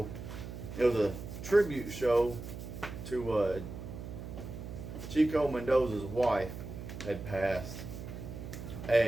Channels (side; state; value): right; noise; hum, 9 dB below the sound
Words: It was a tribute show to Chico Mendoza's wife had passed,